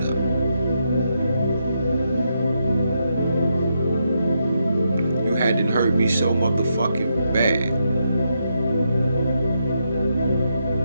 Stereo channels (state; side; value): inverted; both; correlation -0.81